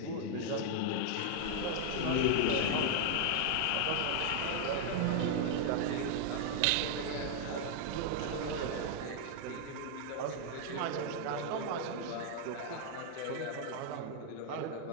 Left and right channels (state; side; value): different; both; correlation 0.00